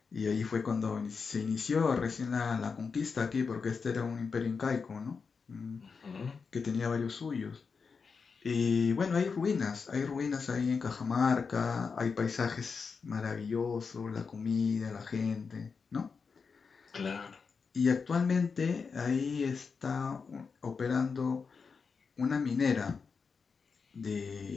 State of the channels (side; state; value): right; quieter; 5.3 dB